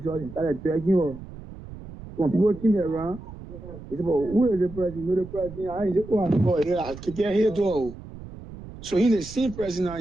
and started dragging her. When people came around, they said, but who is the president? You know the president. I ain't go and call here. I keep here door. So in the same president now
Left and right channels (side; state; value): right; noise; rumble, 14 dB below the sound